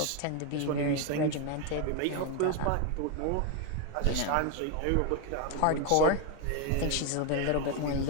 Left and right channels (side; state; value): both; different; correlation 0.02